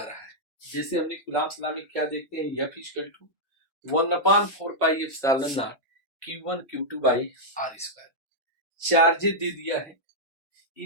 रहा है। जैसे हमने कूलम्ब्स लॉ में क्या देखते हैं, F equal to 1/4 pi epsilon not Q1 Q2 by R square. Charges दे दिया है,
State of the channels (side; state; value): both; normal; correlation -0.07